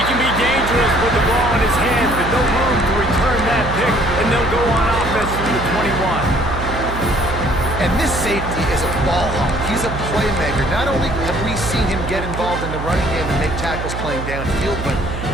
can be dangerous with the ball in his hands, but no room to return that pick, and they'll go on offense through the 21. And this safety is a ball hawk. He's a playmaker. Not only have we seen him get involved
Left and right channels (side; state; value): right; noise; hum, 6 dB below the sound